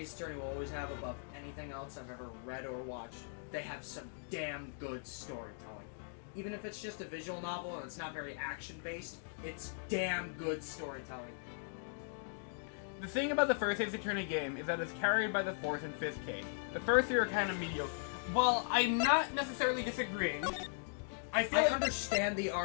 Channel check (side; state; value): right; silent; digital silence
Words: Attorney will always have above anything else I've ever read or watched. They have some damn good storytelling. Even if it's just a visual novel and it's not very action-based, it's damn good storytelling. The thing about the first Ace Attorney game is that it's carried by the fourth and fifth case. The first three are kind of mediocre. While I'm not necessarily disagreeing, I feel I like... understand the